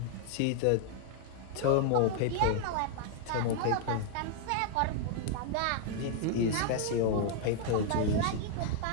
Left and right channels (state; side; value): different; both; correlation 0.00